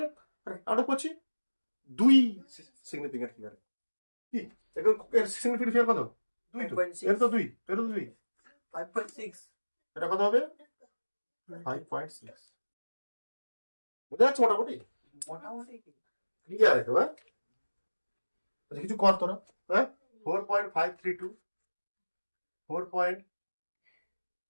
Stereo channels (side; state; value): both; inverted; correlation -1.00